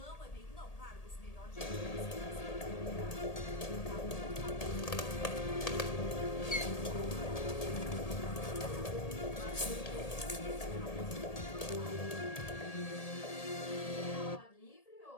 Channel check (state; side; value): late; right; 1.8 ms